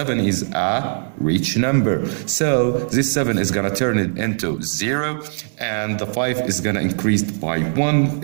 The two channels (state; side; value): silent; left; digital silence